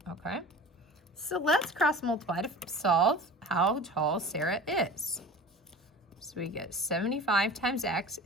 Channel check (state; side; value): normal; both; correlation 0.38